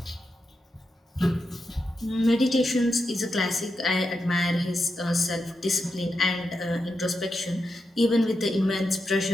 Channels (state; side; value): normal; both; correlation 0.86